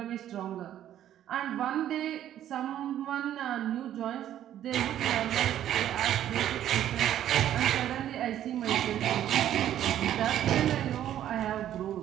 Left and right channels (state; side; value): quieter; left; 11.4 dB